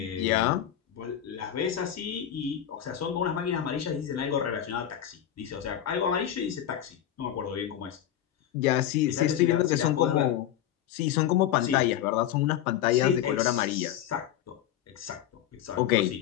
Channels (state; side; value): quieter; right; 11.0 dB